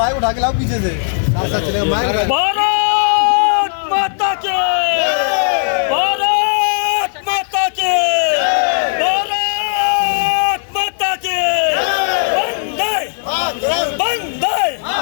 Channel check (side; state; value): right; silent; digital silence